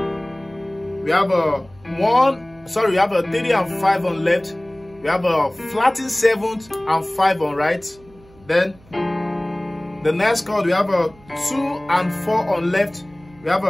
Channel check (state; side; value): noise; right; hum, 26 dB below the sound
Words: have a 3 and 5 on left. We have a flattened 7th and 5 on right. Then the next chord, we have a 2 and 4 on left. We have